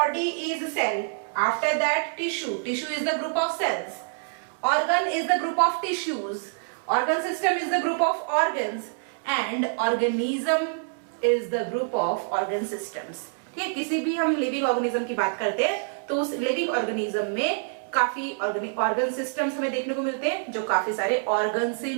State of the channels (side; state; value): left; silent; 61 dB below the other